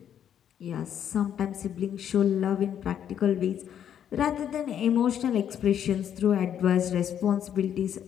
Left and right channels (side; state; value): right; quieter; 9.4 dB